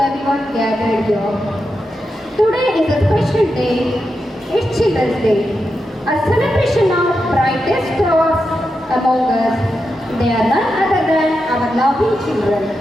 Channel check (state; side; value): normal; both; correlation 0.87